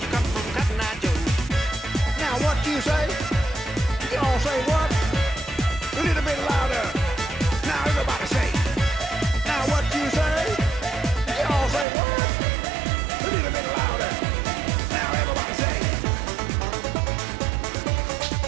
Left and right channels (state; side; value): drops out; left; at 11.9 s